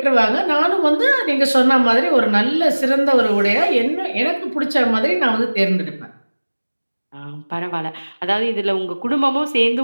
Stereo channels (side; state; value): both; inverted; correlation -1.00